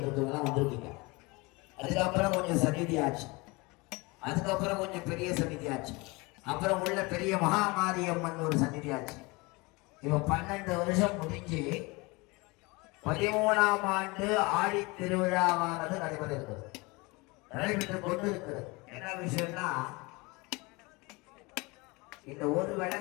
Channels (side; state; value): right; quieter; 25.4 dB